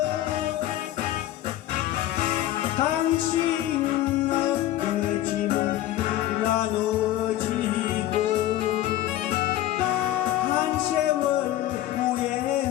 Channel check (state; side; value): quieter; right; 13.8 dB